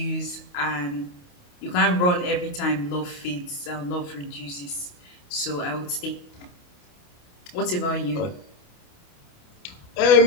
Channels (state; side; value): late; right; 28 ms